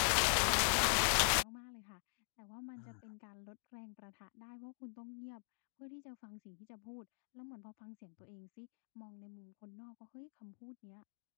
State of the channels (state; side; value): silent; right; digital silence